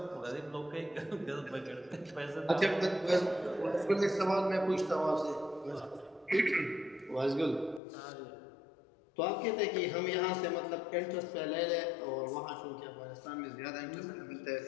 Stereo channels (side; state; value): right; drops out; at 7.8 s